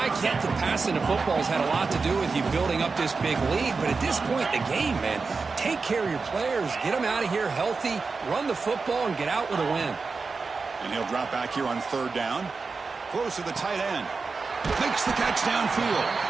get that passing the football has had a lot to do with you building up this big lead, but at this point in the game, man, take care of your players, get them out of here healthy, run the football, and get out with a win. And he'll drop back here on 3rd down. Close to the tight end. Makes the catch downfield.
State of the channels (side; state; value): left; quieter; 4.5 dB